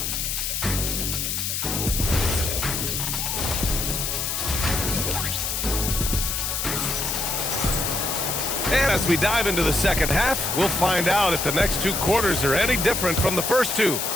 As we dive into the second half, we'll find out if the next 2 quarters are any different from the first 2.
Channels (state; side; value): noise; left; hiss, 1 dB below the sound